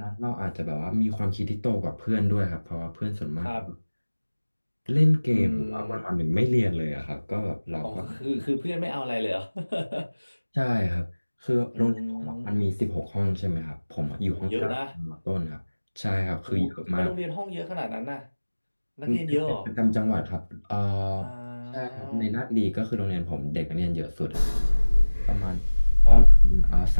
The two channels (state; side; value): inverted; both; correlation -1.00